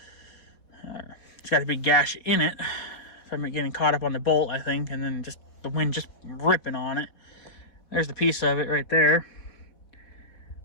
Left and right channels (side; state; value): right; late; 4.1 ms